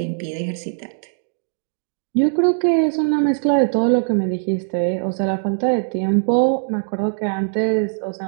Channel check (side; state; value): left; silent; digital silence